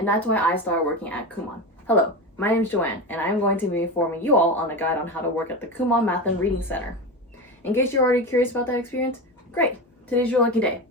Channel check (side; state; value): both; normal; correlation 0.22